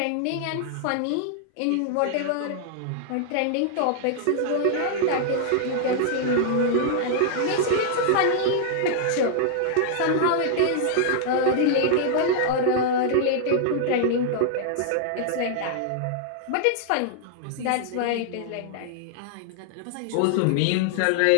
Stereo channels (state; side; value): different; both; correlation -0.01